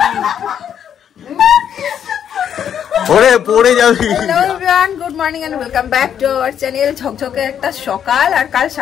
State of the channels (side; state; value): right; quieter; 8.9 dB